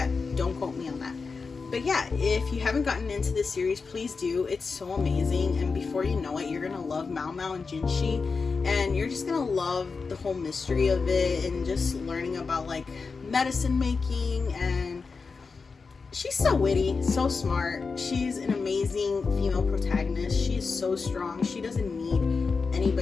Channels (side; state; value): right; quieter; 4.7 dB